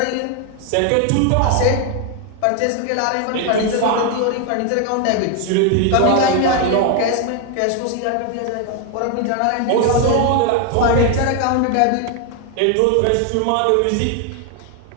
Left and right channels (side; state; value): both; different; correlation 0.01